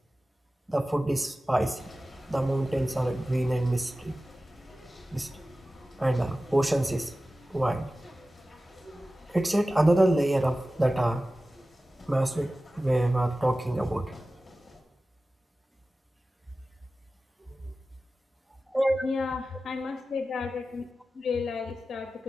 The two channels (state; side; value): normal; both; correlation 0.95